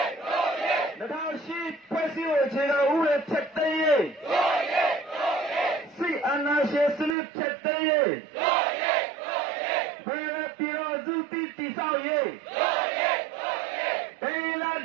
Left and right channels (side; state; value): left; drops out; at 7.2 s